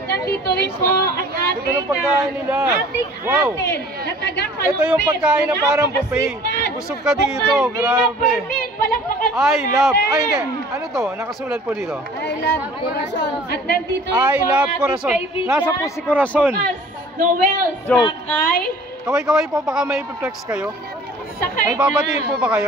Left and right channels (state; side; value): normal; both; correlation 0.49